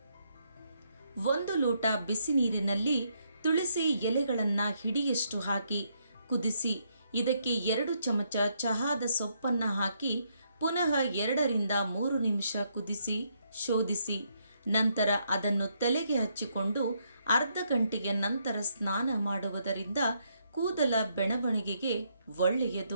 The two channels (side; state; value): both; inverted; correlation -0.75